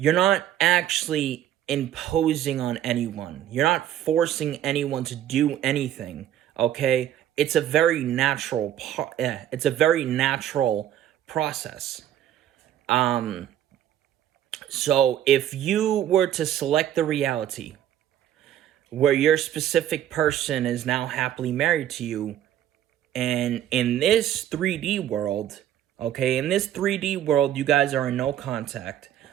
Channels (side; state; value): left; quieter; 11.2 dB